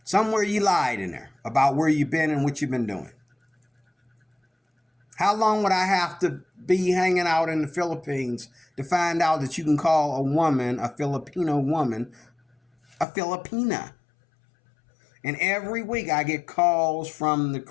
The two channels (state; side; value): drops out; right; at 13.1 s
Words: Somewhere you lied in there about where you've been and what you've been doing. How long would I have to be hanging out in the Philippines to find out that you can call a woman, a Filipino woman, a Filipina? And every week I get calls from the